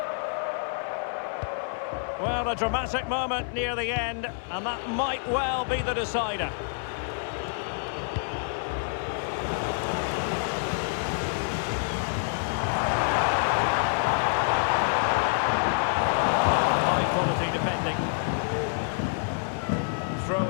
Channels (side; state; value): right; silent; 60 dB below the other